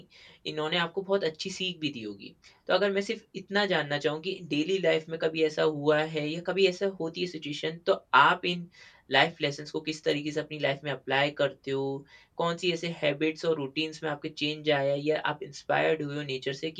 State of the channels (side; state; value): both; identical; correlation 1.00